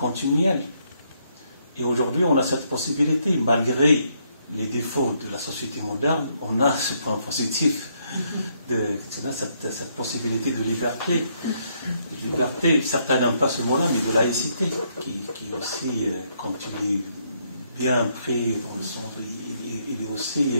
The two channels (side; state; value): both; inverted; correlation -0.73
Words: Et aujourd'hui, on a cette possibilité, malgré les défauts de la société moderne, on a ce point positif, cette possibilité de liberté. Liberté, certains n'aiment pas ce mot-là, mais de laïcité, qui aussi, quand il est bien pris dans le sens, il est aussi